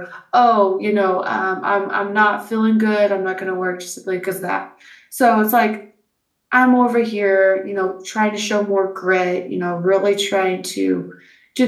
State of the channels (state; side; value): identical; both; correlation 1.00